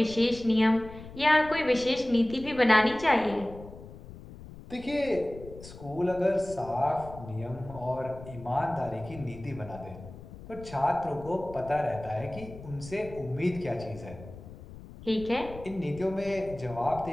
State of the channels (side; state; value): left; noise; rumble, 15 dB below the sound